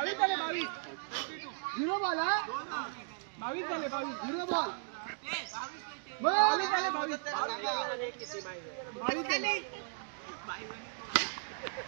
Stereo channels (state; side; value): silent; left; digital silence